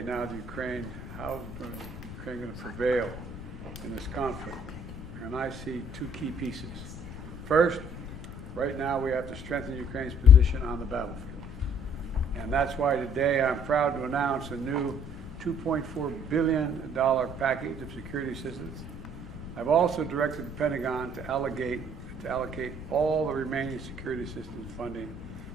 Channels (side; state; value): left; noise; rumble, 12 dB below the sound